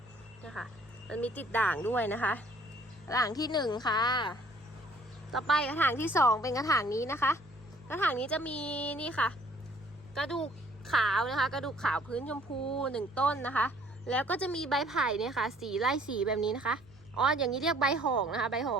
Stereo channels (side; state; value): right; noise; hum, 27 dB below the sound